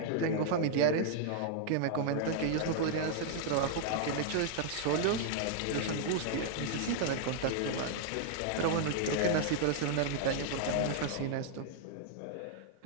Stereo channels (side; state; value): both; different; correlation -0.01